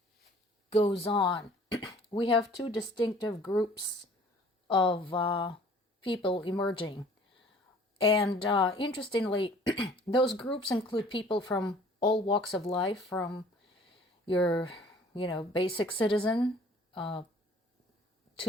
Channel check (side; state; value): both; normal; correlation 0.53